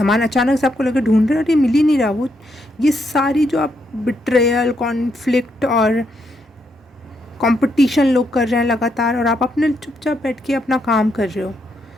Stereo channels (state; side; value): normal; both; correlation 0.78